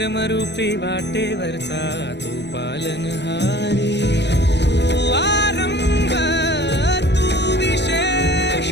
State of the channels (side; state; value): right; late; 0.50 ms